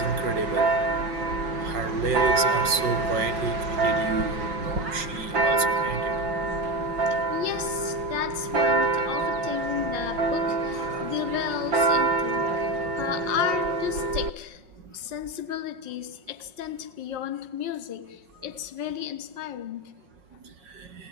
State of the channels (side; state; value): left; late; 5.5 ms